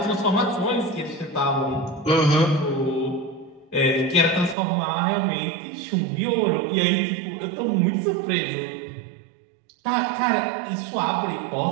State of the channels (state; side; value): drops out; left; at 4.5 s